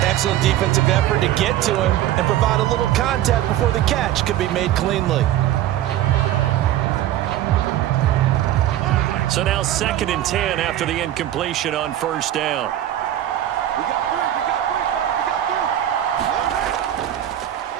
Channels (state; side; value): quieter; left; 12.6 dB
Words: Excellent defensive effort to get to him and provide a little contact before the catch could be made cleanly. So now 2nd and 10 after the incompletion on first down.